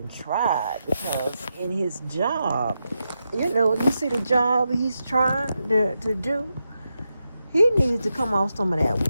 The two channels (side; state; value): both; inverted; correlation -0.87